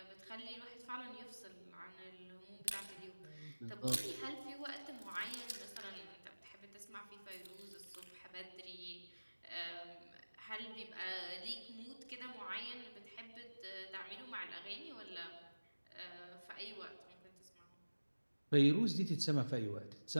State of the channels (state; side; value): inverted; both; correlation -1.00